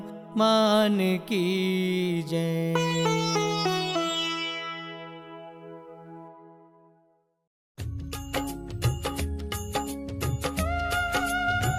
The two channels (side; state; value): both; identical; correlation 1.00